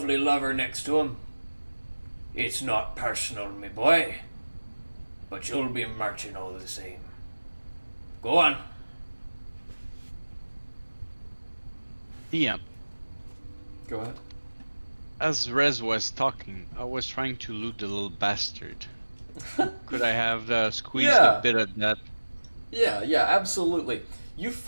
lover next to 'em. It's not personal, me boy, but you'll be marching all the same. Go on. Yeah. Go ahead. As Rez was talking, I was trying to loot the little bastard. Could I have squeezed Yeah. a bit of that? Yeah, absolutely. You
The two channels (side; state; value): both; inverted; correlation -1.00